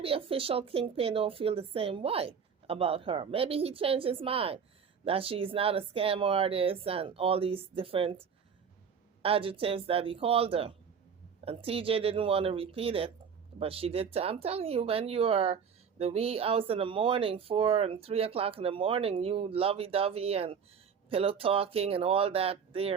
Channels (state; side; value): quieter; left; 6.7 dB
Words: official Kingpin don't feel the same way about her. Maybe he changed his mind that she's not a scam artist and all these different adjectives that he called her. And TJ didn't want to repeat it, but she did. I'm telling you, when you are the wee hours in the morning, 4 and 3 o'clock in the morning, you lovey-dovey and pillow talking and all that